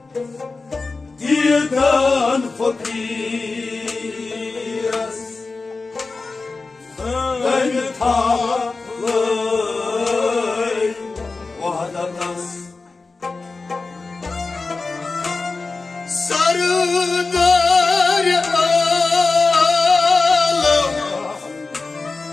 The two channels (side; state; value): right; quieter; 3.9 dB